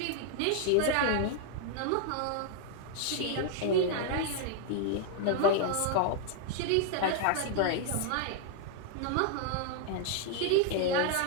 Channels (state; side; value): different; both; correlation 0.00